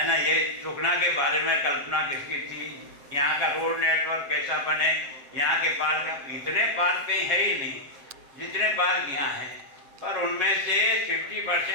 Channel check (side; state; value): left; late; 7.8 ms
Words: ना, ये सुखना के बारे में कल्पना किसकी थी, यहाँ का रोड नेटवर्क कैसा बने, यहाँ के पार्क, इतने पार्क कहीं है ही नहीं जितने पार्क यहाँ हैं, पर उनमें से